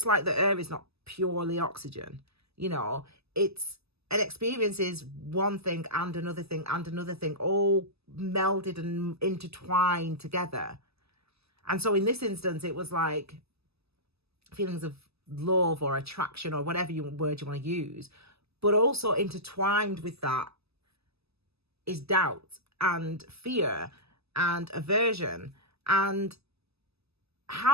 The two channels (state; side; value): late; left; 0.79 ms